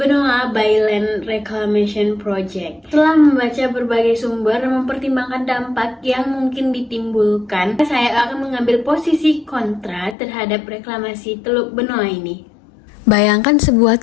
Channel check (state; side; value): drops out; right; at 10.2 s